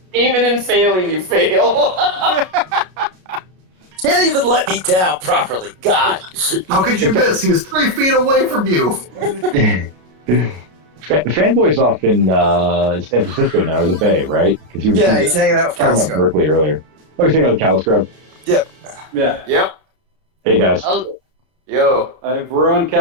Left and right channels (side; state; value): left; late; 32 ms